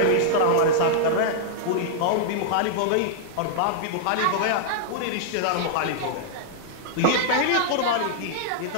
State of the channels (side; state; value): both; different; correlation -0.01